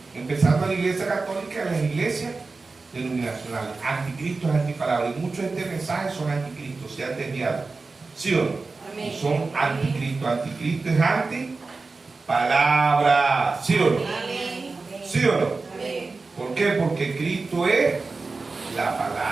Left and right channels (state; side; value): quieter; left; 3.9 dB